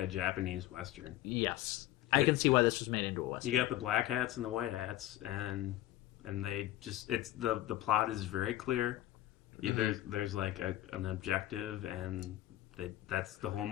Japanese Western. Yes, I can see why this was made into a western. You got the black hats and the white hats, and they just the plot is very clear. There's like an objective, and that's the whole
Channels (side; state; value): right; quieter; 14.9 dB